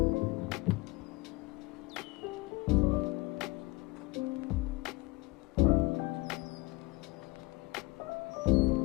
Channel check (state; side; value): quieter; right; 22.6 dB